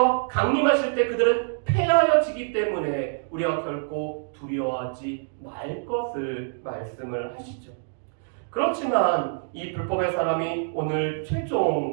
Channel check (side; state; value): left; silent; digital silence